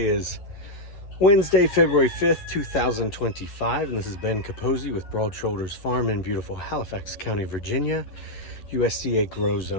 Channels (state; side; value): late; right; 11 ms